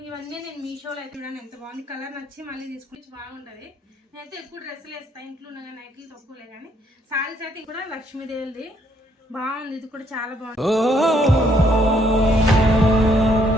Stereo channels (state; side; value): normal; both; correlation 0.69